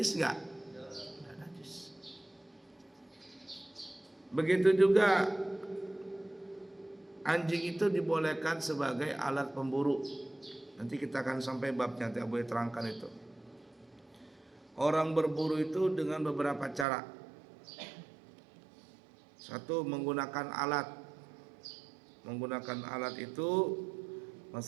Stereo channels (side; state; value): left; drops out; at 16.9 s